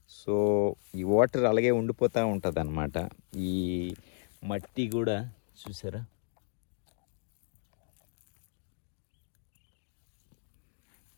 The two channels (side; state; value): right; silent; digital silence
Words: సో ఈ వాటర్ అలాగే ఉండిపోతూ ఉంటుంది అనమాట. ఈ మట్టి కూడా చూసారా,